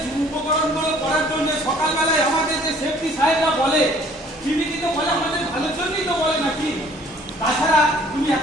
উপকরণগুলো করার জন্য সকালবেলায় আমাদের যে সেফটি সাহেবরা বলে, তিনি কিন্তু বলে আমাদের ভালোর জন্যই তো বলে নাকি? তাছাড়া তুমি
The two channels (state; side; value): normal; both; correlation 0.56